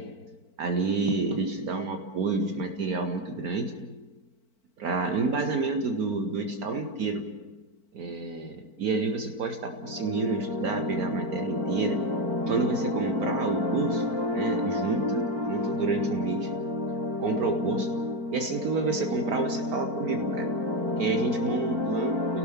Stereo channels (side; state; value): left; late; 4.5 ms